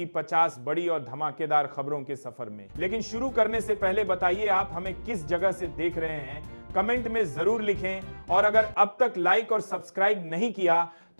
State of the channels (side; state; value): both; inverted; correlation -1.00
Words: 50 बड़ी और धमाकेदार खबरों के सफर में। लेकिन शुरू करने से पहले बताइए आप हमें किस जगह से देख रहे हैं, कमेंट में जरूर लिखें। और अगर अब तक लाइक और सब्सक्राइब नहीं किया